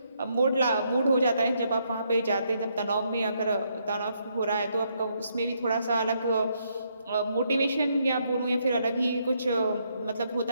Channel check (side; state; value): both; inverted; correlation -0.75